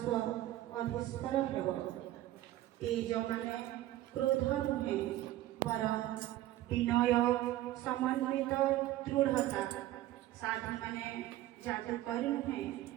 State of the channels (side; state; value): left; quieter; 14.8 dB